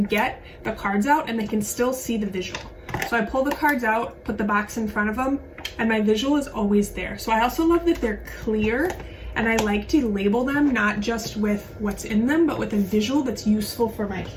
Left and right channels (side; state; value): both; identical; correlation 1.00